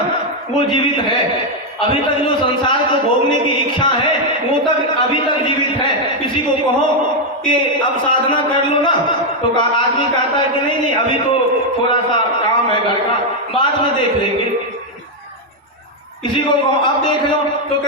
वो जीवित है। अभी तक जो संसार को भोगने की इच्छा है वो तक अभी तक जीवित है। किसी को कहो कि अब साधना कर लो ना तो आदमी कहता है कि नहीं नहीं अभी तो थोड़ा सा काम है घर का, बाद में देख लेंगे। किसी को कहो अब देख लो तो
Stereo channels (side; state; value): both; normal; correlation 0.02